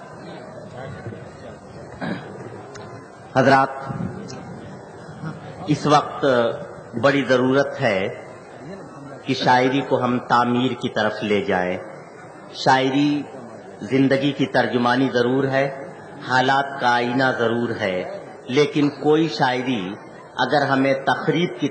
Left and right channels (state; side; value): identical; both; correlation 1.00